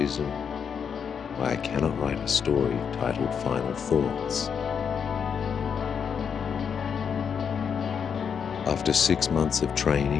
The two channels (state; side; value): quieter; right; 7.1 dB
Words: why I cannot write a story titled Final Thoughts. After 6 months of